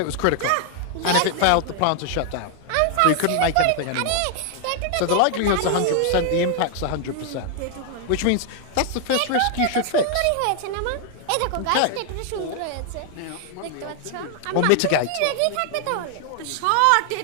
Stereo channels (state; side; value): different; both; correlation 0.00